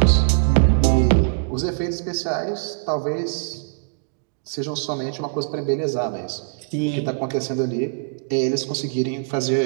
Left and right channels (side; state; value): left; silent; digital silence